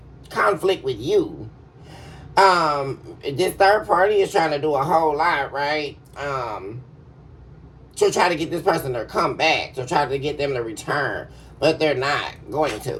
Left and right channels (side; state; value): both; identical; correlation 1.00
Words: conflict with you. This third party is trying to do a whole lot, right? To try to get this person to come back, to try to get them to return, but they're not going